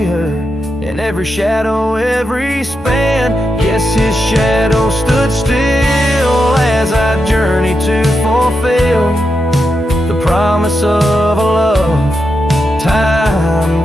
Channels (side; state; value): both; normal; correlation 0.86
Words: her in every shadow, every span. Yes, his shadow stood still as I journeyed to fulfill the promise of a love